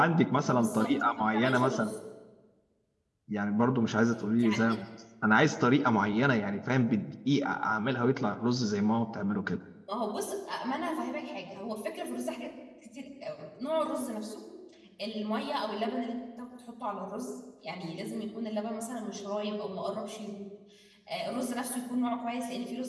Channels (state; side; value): identical; both; correlation 1.00